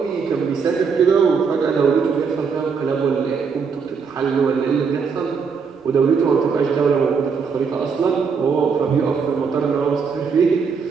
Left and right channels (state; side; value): quieter; left; 5.7 dB